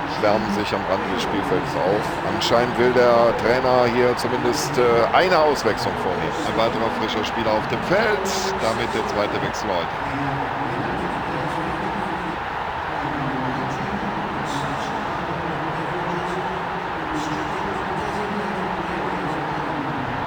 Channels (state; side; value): identical; both; correlation 1.00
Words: wärmen sich am Rande des Spielfelds auf. Anscheinend will der Trainer hier zumindest eine Auswechslung vornehmen. Ein weiterer frischer Spieler auf dem Feld. Damit der zweite Wechsel heute.